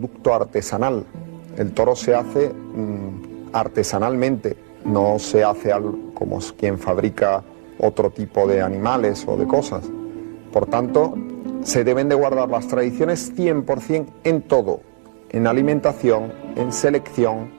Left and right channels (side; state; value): left; silent; digital silence